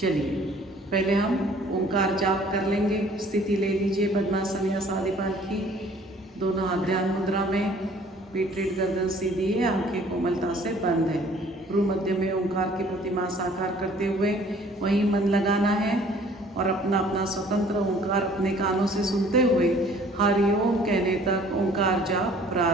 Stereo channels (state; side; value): normal; both; correlation 0.55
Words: पहले हम ओंकार जाप कर लेंगे। स्थिति ले लीजिए पद्मासन या सादीपाल की, दोनों हाथ ध्यान मुद्रा में, पीठ रीढ़ गर्दन सीधी है, आंखें कोमलता से बंद है। भ्रू मध्य में ओंकार की प्रतिमा साकार करते हुए वहीं मन लगाना है और अपना अपना स्वतंत्र ओंकार अपने कानों से सुनते हुए हरिओम कहने तक ओंकार जाप